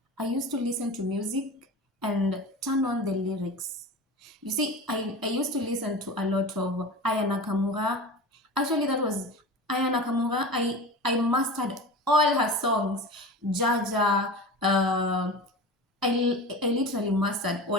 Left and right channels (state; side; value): normal; both; correlation 0.31